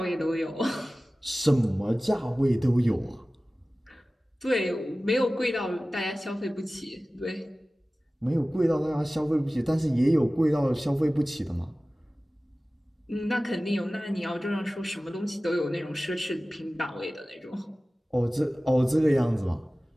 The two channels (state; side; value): normal; both; correlation 0.97